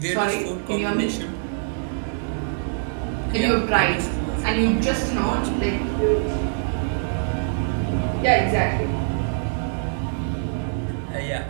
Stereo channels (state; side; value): silent; left; digital silence